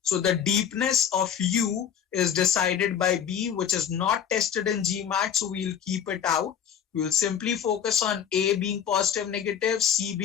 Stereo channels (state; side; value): quieter; right; 8.6 dB